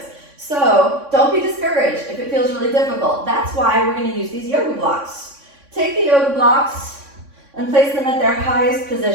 So don't be discouraged if it feels really difficult. That's why we're going to use these yoga blocks. Take the yoga blocks and place them at their highest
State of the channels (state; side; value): late; left; 3.6 ms